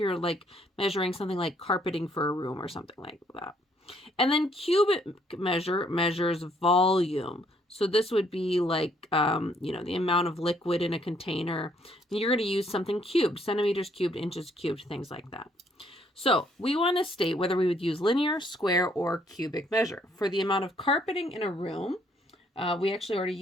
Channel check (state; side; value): normal; both; correlation 0.67